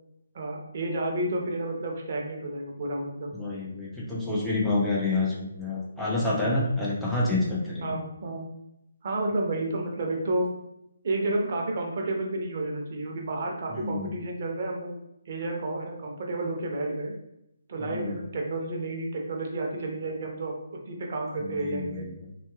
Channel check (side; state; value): both; inverted; correlation -0.64